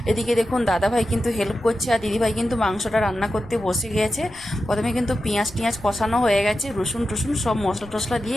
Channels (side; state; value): left; noise; rumble, 22 dB below the sound